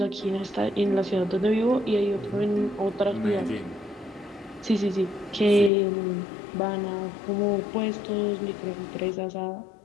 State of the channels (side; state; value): right; drops out; at 5.7 s